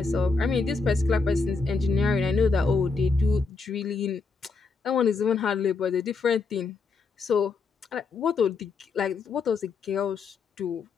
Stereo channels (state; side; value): quieter; right; 4.4 dB